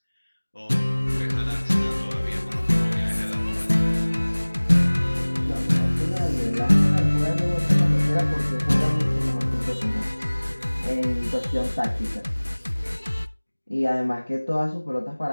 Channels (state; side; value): inverted; both; correlation -1.00